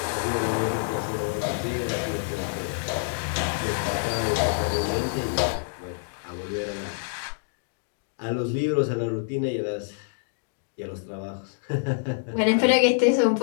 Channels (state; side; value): silent; right; digital silence